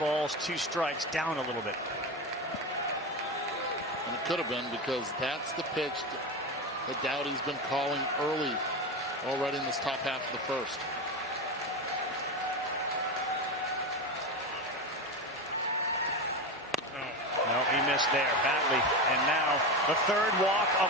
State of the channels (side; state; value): both; normal; correlation 0.19